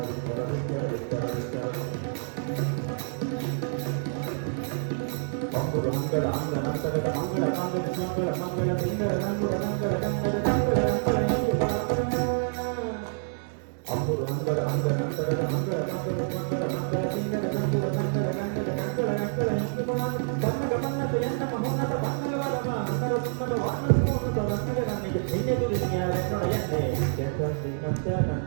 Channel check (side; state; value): left; silent; 60 dB below the other